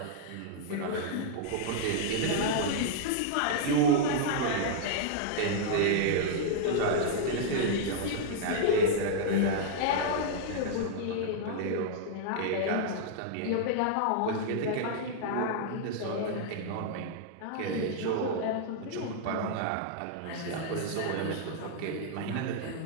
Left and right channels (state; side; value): different; both; correlation -0.01